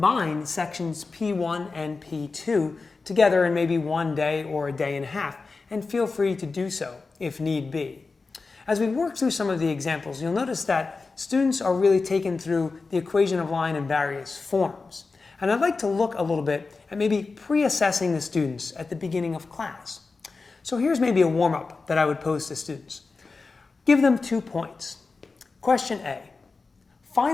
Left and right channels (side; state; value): right; quieter; 4.1 dB